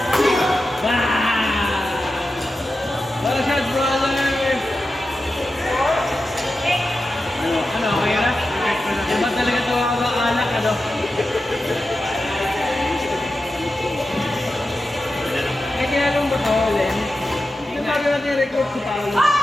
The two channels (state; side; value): normal; both; correlation 0.91